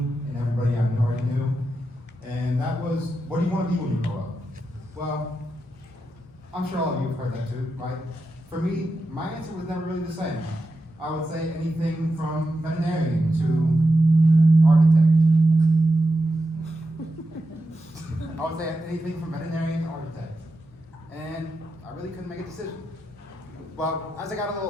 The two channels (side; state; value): both; normal; correlation 0.88